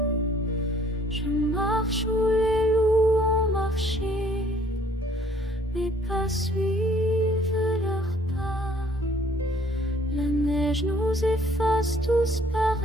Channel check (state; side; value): normal; both; correlation 0.60